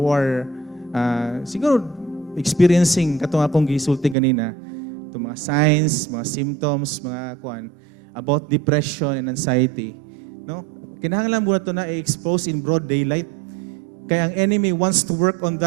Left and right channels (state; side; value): drops out; left; at 4.2 s